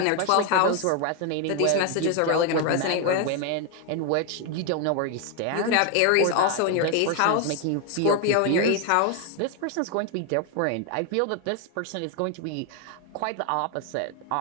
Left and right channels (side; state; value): both; different; correlation 0.01